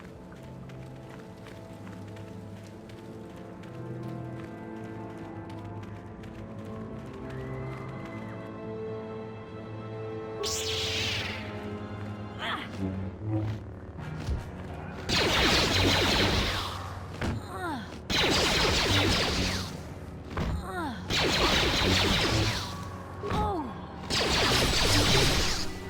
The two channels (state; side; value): identical; both; correlation 1.00